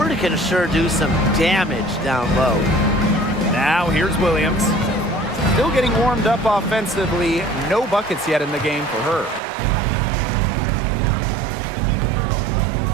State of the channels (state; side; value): drops out; left; at 9.4 s